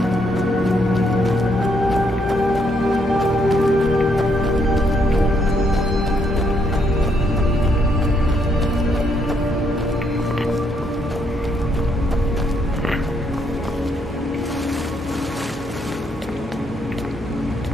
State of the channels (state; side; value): normal; both; correlation 0.73